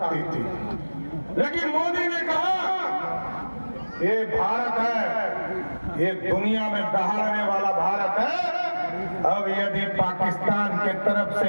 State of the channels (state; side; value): inverted; both; correlation -1.00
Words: थी। लेकिन मोदी ने कहा ये भारत है, ये दुनिया में दहाड़ने वाला भारत है। अब यदि पाकिस्तान के तरफ से